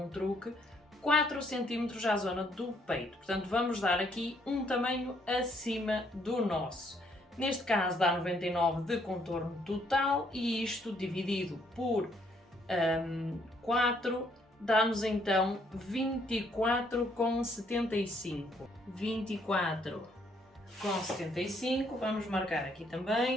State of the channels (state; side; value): normal; both; correlation 0.69